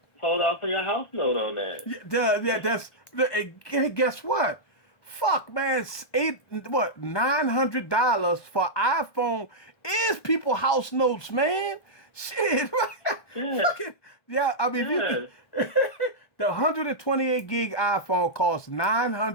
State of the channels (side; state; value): right; late; 1.2 ms